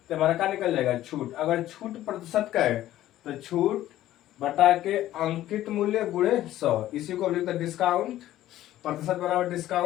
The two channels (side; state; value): right; quieter; 13.8 dB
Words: हमारा क्या निकल जाएगा, छूट। अगर छूट प्रतिशत का है तो छूट बटा के अंकित मूल्य गुणे 100, इसी को लिखते हैं डिस्काउंट प्रतिशत बराबर